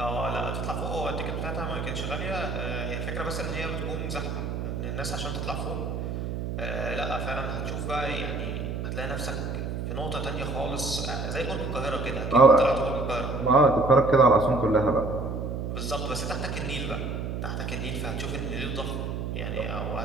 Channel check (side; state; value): right; noise; hum, 3 dB below the sound